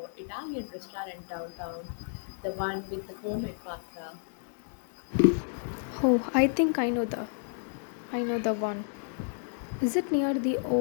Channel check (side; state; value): right; silent; digital silence